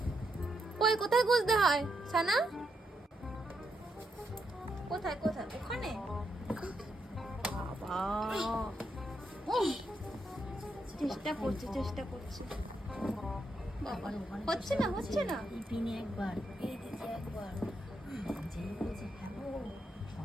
কই, কোথায় গুজতে হয় সানা? কোথায় কোথায়? ওখানে? বাবা, চেষ্টা করছি, চেষ্টা করছি। বাবা, হচ্ছে না, হচ্ছে না। এই পিনে একবার, এই দিকে একবার। যে বলছে হ্যাঁ গো,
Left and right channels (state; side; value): normal; both; correlation 0.81